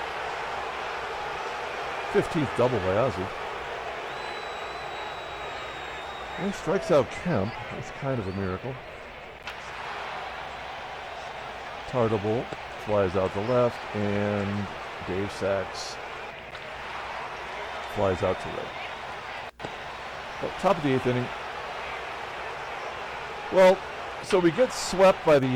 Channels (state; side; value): identical; both; correlation 1.00